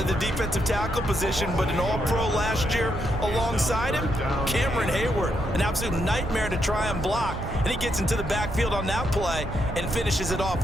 the defensive tackle position, but an all-pro last year alongside him, Cameron Hayward, an absolute nightmare to try and block. And he gets into the backfield on that play and finishes it off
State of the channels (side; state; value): right; noise; rumble, 8 dB below the sound